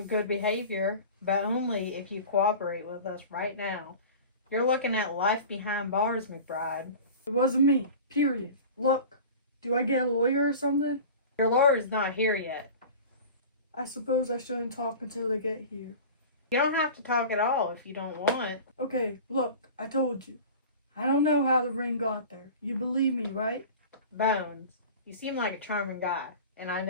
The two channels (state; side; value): inverted; both; correlation -0.37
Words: good behavior, but only if you cooperate with us right now. You're looking at life behind bars, McBride. It wasn't me, period. Look, do I get a lawyer or something? Your lawyer's not here yet. I suppose I shouldn't talk until they get here. You don't have to talk at all if you don't want. Okay, look, I told you. I don't know how the ring got there. You believe me, right? Bones, you seem like a charming guy, and I